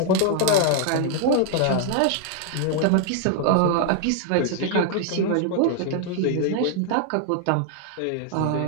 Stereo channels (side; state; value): both; different; correlation -0.01